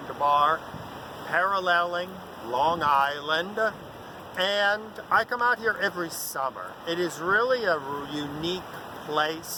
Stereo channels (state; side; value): identical; both; correlation 1.00